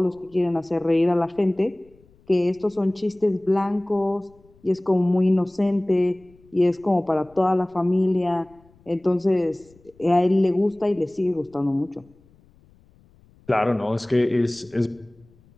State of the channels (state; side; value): noise; left; rumble, 30 dB below the sound